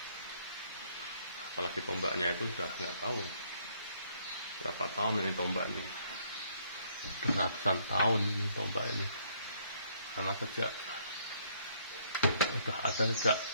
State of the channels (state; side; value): inverted; both; correlation -0.68